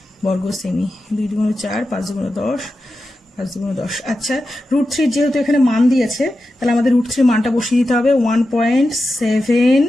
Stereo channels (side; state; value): both; normal; correlation 0.91